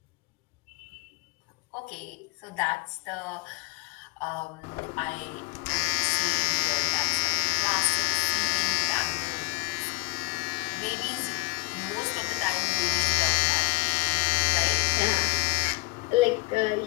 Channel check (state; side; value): quieter; right; 27.1 dB